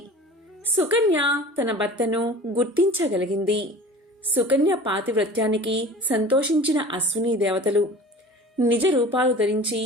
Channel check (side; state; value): both; normal; correlation 0.41